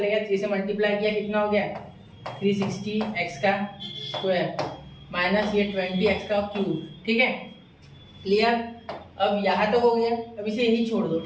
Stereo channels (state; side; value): identical; both; correlation 1.00